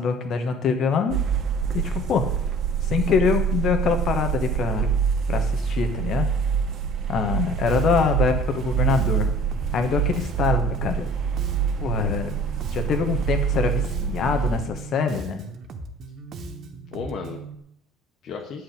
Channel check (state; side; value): normal; both; correlation 0.49